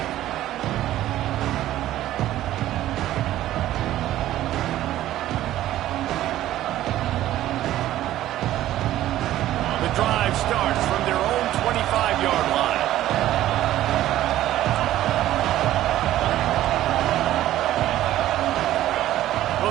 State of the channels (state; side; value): quieter; left; 13.8 dB